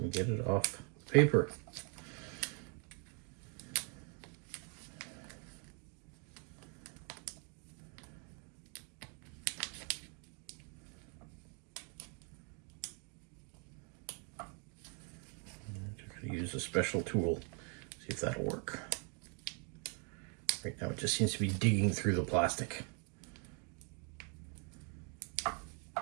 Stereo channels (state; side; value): quieter; left; 37.6 dB